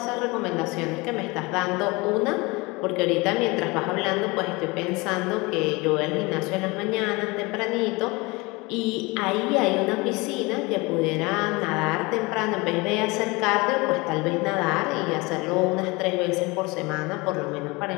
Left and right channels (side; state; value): right; quieter; 24.9 dB